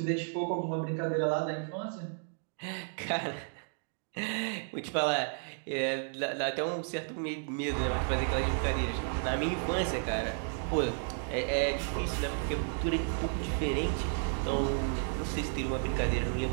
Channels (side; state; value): left; silent; 56 dB below the other